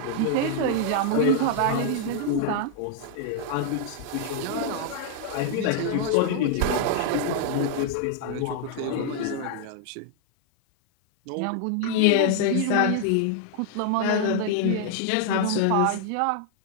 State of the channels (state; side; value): different; both; correlation 0.00